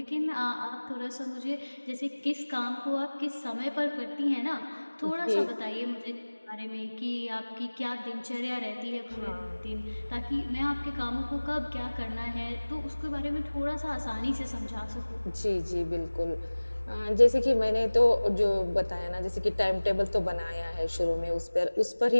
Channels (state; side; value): inverted; both; correlation -1.00